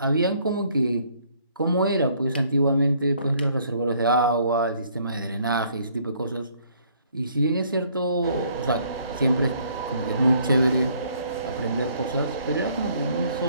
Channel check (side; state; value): both; inverted; correlation -0.63